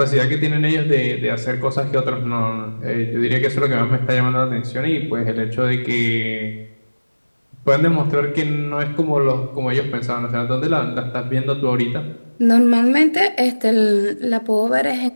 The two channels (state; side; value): inverted; both; correlation -1.00